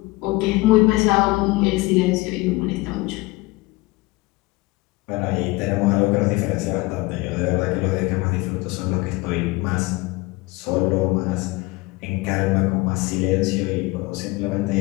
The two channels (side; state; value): right; quieter; 22.2 dB